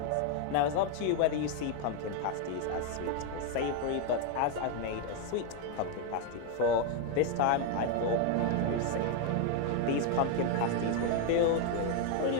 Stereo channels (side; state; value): both; different; correlation 0.01